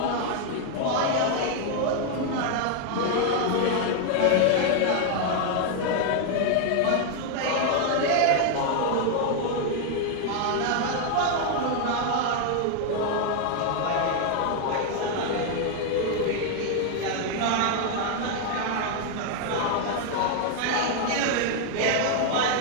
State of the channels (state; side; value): different; both; correlation 0.00